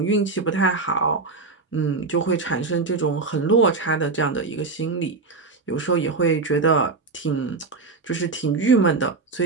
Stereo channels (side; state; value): left; quieter; 4.0 dB